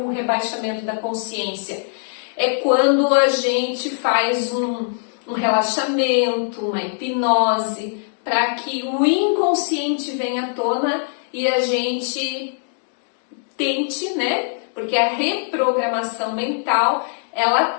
rebaixamento da consciência? É quando a gente faz um relaxamento, uma hipnose, para que o inconsciente venha à tona e a gente tente, né? Porque a reprogramação mental, ela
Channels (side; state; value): right; silent; digital silence